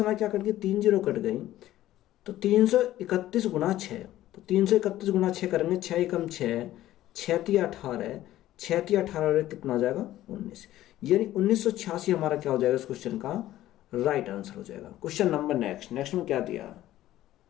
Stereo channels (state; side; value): quieter; right; 14.2 dB